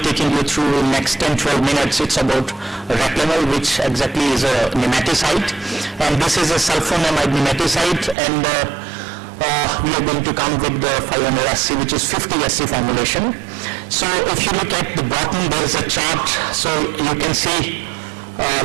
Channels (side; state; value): left; drops out; at 8.2 s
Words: taking you through in next 10-12 minutes, it's about Reclamel, which exactly is a nematicide, and this is a sulfonamide nematicide, and we are going to come with the 500 SC, which is 50 SC formulation. So if you look at the bottom, there is a chart, so you can see